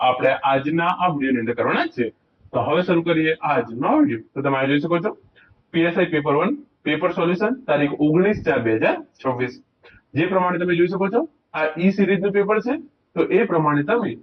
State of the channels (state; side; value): identical; both; correlation 1.00